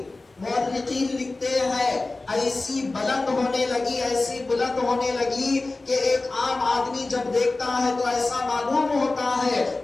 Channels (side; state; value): right; quieter; 3.3 dB